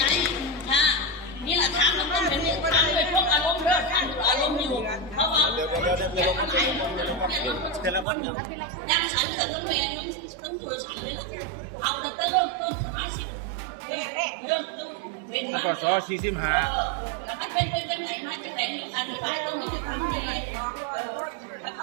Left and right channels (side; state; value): left; drops out; at 8.1 s